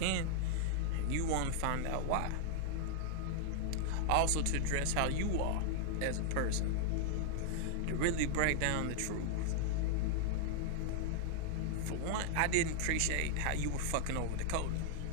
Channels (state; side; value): different; both; correlation 0.00